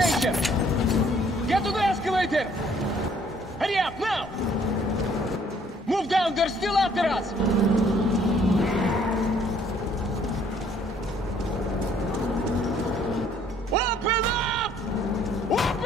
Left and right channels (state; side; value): normal; both; correlation 0.62